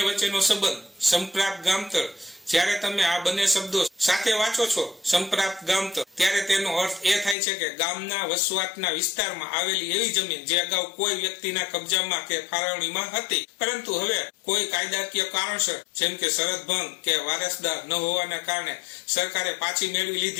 વચ્ચેનો સંબંધ સંપ્રાપ્ત ગામતળ. જ્યારે તમે આ બંને શબ્દો સાથે વાંચો છો, સંપ્રાપ્ત ગામતળ, ત્યારે તેનો અર્થ એ થાય છે કે ગામના વસવાટના વિસ્તારમાં આવેલી એવી જમીન જે અગાઉ કોઈ વ્યક્તિના કબજામાં કે ફાળવણીમાં હતી, પરંતુ હવે કોઈ કાયદાકીય કારણસર જેમ કે શરત ભંગ કે વારસદાર ન હોવાના કારણે સરકારે પાછી મેળવી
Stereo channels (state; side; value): drops out; right; at 7.4 s